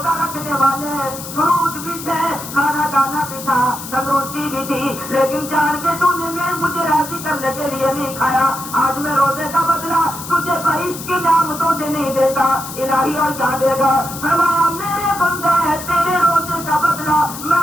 رکھنے والے, فروٹ بھی تھے, کھانا دانا بھی تھا, تندرستی بھی تھی, لیکن جان کے تو نے مجھے راضی کرنے کے لیے نہیں کھایا. آج میں روزے کا بدلہ تجھے بہشت کی نعمتوں سے نہیں دیتا, الہی اور کیا دے گا فرمایا میرے بندے ہے تیرے روزے کا بدلہ میں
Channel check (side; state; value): left; noise; hiss, 11 dB below the sound